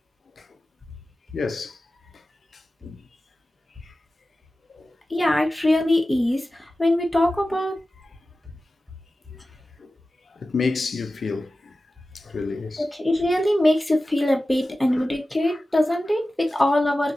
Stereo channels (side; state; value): both; normal; correlation 0.95